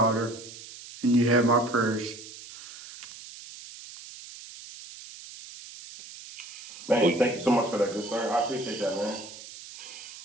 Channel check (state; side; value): noise; right; hiss, 15 dB below the sound